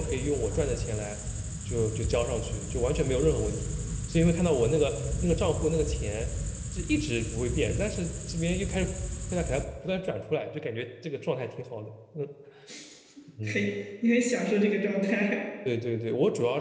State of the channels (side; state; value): both; identical; correlation 1.00